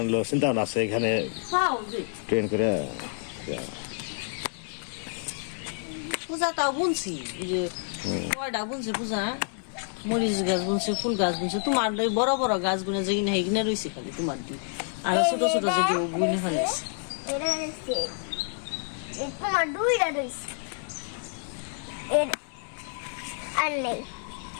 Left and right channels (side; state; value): right; silent; 59 dB below the other